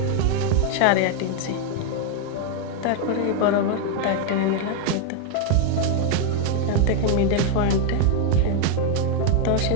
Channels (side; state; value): both; different; correlation 0.00